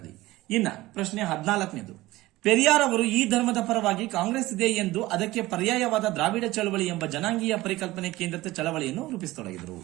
ಇನ್ನ ಪ್ರಶ್ನೆ 14. ಪೆರಿಯಾರ್ ಅವರು ಈ ಧರ್ಮದ ಪರವಾಗಿ ಕಾಂಗ್ರೆಸ್ ಇದೆ ಎಂದು ಅದಕ್ಕೆ ಪರ್ಯಾಯವಾದ ದ್ರಾವಿಡ ಚಳವಳಿ ಎಂಬ ಜನಾಂಗೀಯ ಪರಿಕಲ್ಪನೆ ಕೇಂದ್ರಿತ ಚಳವಳಿಯನ್ನು ರೂಪಿಸತೊಡಗಿದರು.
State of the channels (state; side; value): quieter; left; 18.2 dB